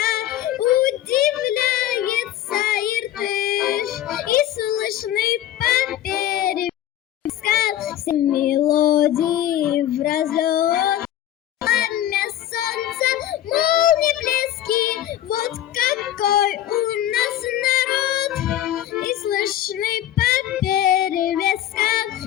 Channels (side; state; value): right; quieter; 12.4 dB